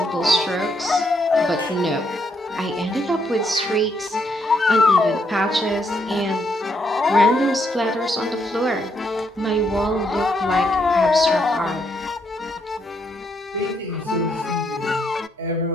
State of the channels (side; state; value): both; normal; correlation 0.75